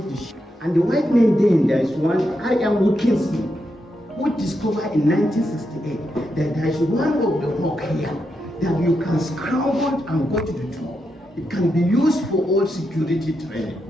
the ship. And the white men then, there is one, I.M. Wilkinson, who discovered in 1968 that there is one of the rock here that you can scramble and go to the top. It can be used for all security training.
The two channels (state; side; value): normal; both; correlation 0.84